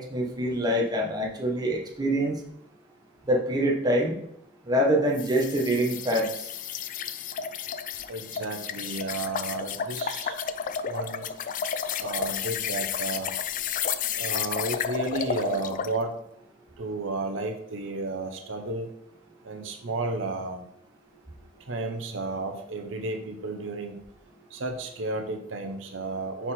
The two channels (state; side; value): normal; both; correlation 0.18